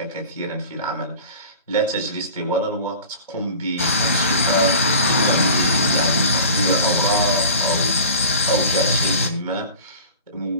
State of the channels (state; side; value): inverted; both; correlation -0.39